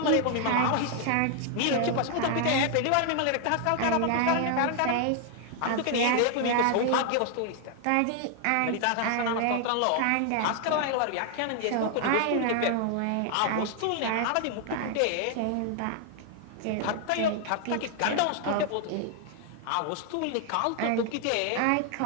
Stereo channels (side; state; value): both; different; correlation 0.00